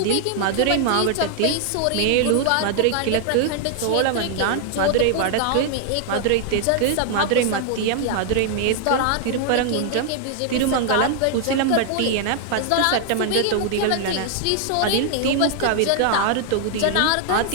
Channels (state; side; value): different; both; correlation 0.00